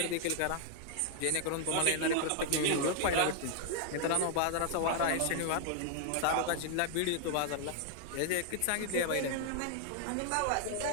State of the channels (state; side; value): different; both; correlation 0.00